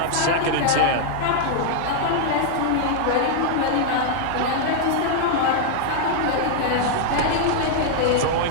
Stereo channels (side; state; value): both; different; correlation -0.01